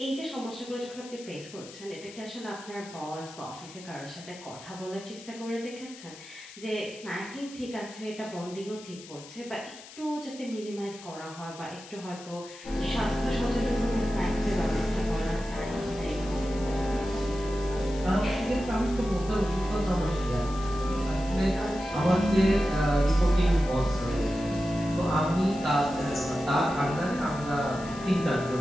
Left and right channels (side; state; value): left; noise; hiss, 17 dB below the sound